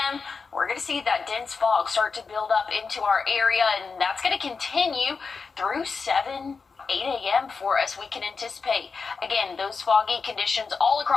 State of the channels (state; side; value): quieter; right; 4.9 dB